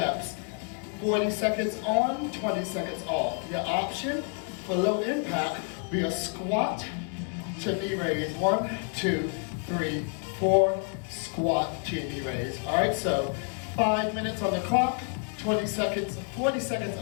40 seconds on, 20 seconds off. Your option for low impact be a squat to knee raise. 1, 2, 3, 4, squat to knee raise. All right, so 5 minutes on the clock, 20 seconds, 40 seconds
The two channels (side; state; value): right; quieter; 37.1 dB